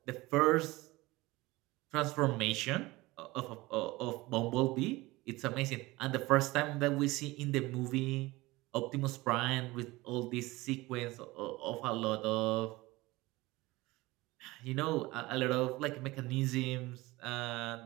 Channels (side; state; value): left; quieter; 20.7 dB